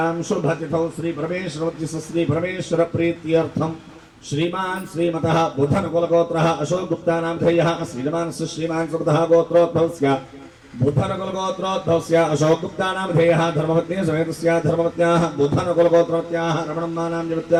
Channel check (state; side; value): identical; both; correlation 1.00